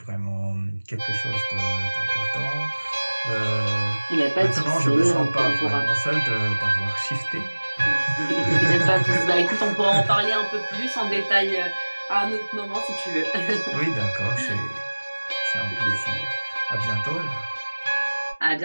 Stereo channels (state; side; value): inverted; both; correlation -1.00